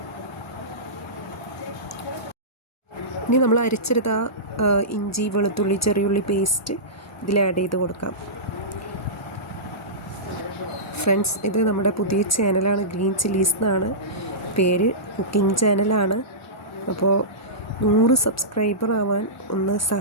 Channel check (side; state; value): both; normal; correlation -0.18